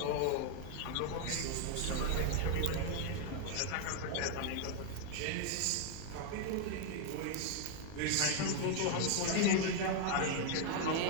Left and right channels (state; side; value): different; both; correlation 0.00